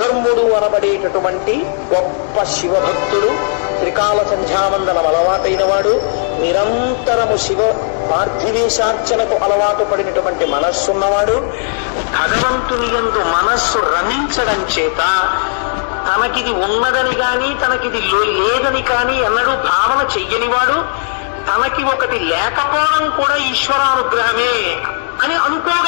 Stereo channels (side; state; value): right; silent; digital silence